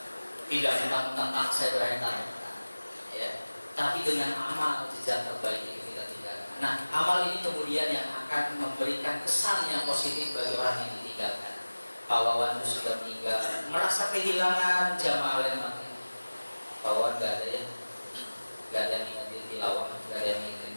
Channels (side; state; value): both; inverted; correlation -1.00